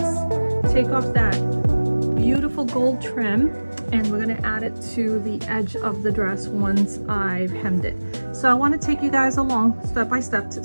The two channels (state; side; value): inverted; both; correlation -1.00